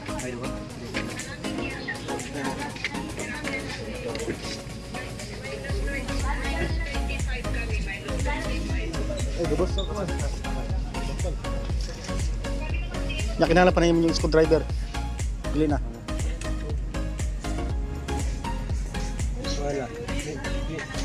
Ayun ba? Lubos ako man. Kinala pa na yung screwdriver. Bili na. Wala.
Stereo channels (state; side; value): identical; both; correlation 1.00